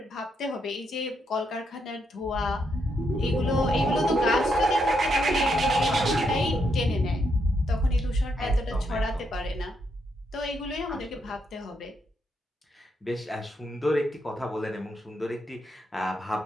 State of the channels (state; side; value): normal; both; correlation 0.79